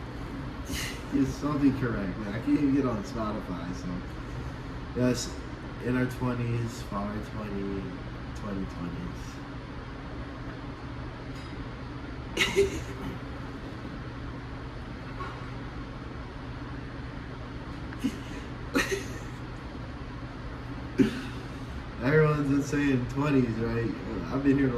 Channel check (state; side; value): identical; both; correlation 1.00